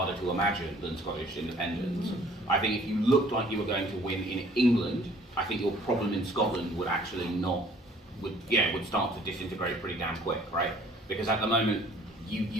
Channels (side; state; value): both; normal; correlation 0.56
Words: to imagine than Scottish independence. I think if you looked like you were going to win in England, I think your problem in Scotland would actually would start to disintegrate pretty damn quick, right? Because at the moment,